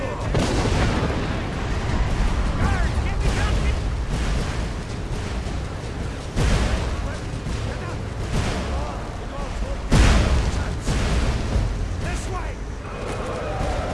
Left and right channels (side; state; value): both; identical; correlation 1.00